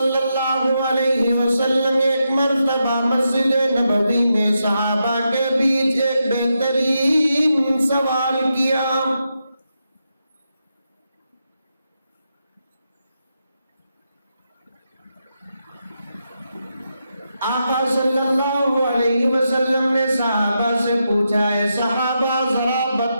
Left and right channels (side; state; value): both; inverted; correlation -0.85